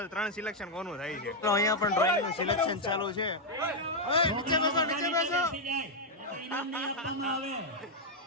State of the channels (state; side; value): normal; both; correlation -0.01